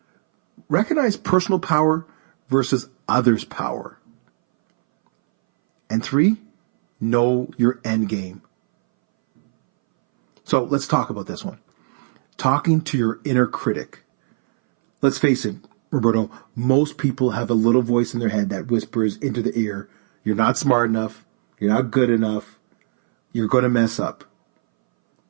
recognize personal power versus others' power. And 3, know your end game. So let's talk about this one. Talking to your inner critic. Let's face it, Roberto, most people have a little voice in their head that whispers into the ear, you're not smart enough, you're not good enough, you're going to mess up.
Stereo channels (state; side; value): silent; left; 63 dB below the other